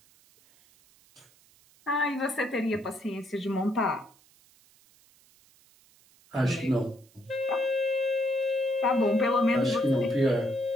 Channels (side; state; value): right; noise; hiss, 30 dB below the sound